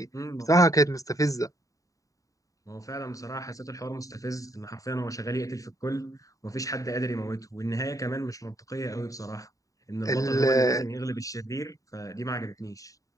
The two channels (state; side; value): late; right; 0.16 ms